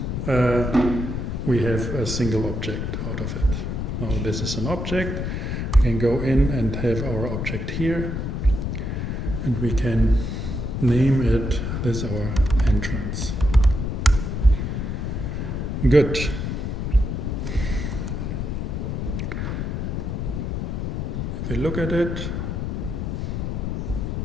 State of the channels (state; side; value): noise; left; rumble, 2 dB below the sound